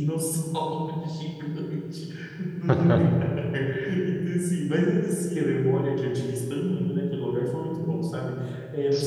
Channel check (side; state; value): both; identical; correlation 1.00